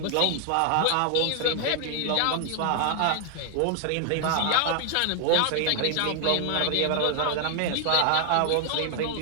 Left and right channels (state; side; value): different; both; correlation 0.00